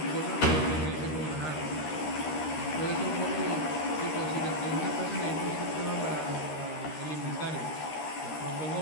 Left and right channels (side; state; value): right; late; 13 ms